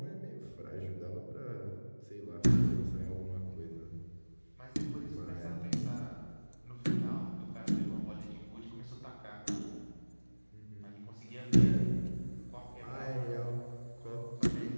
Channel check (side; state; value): both; inverted; correlation -1.00